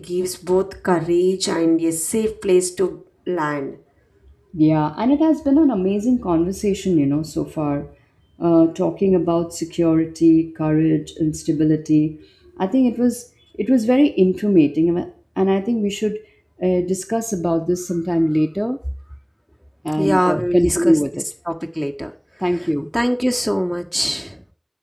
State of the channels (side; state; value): both; identical; correlation 1.00